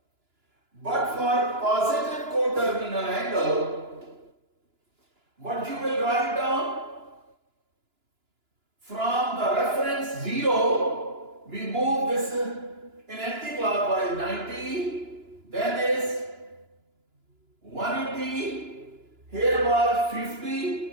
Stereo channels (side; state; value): left; late; 2.9 ms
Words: but for positive coterminal angle, what you will write down? From the reference 0, we move this in anti-clockwise 90, then is 180, here was